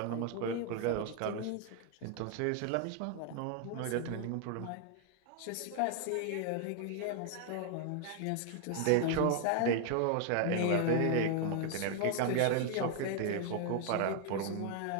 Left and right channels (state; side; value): different; both; correlation 0.00